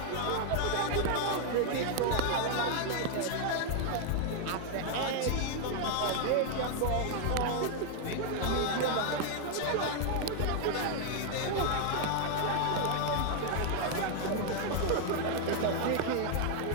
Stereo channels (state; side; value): different; both; correlation 0.00